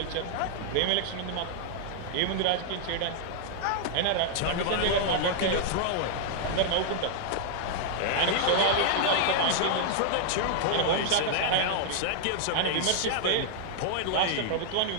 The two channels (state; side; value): different; both; correlation -0.01